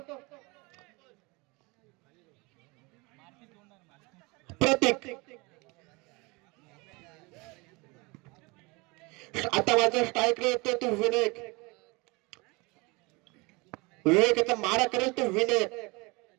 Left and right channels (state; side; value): quieter; left; 26.3 dB